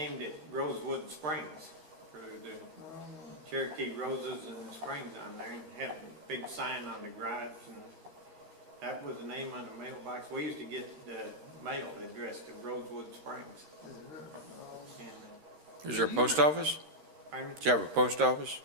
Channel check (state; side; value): late; left; 13 ms